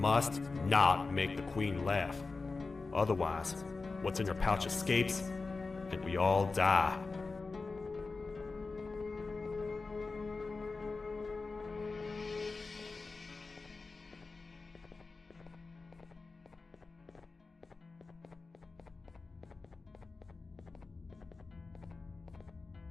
not make the Queen laugh. Otherwise, what's in her pouch escapes, and we all die.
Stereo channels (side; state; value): right; quieter; 4.0 dB